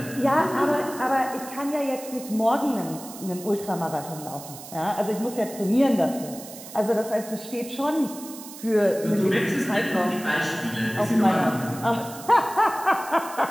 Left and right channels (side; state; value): right; noise; hiss, 15 dB below the sound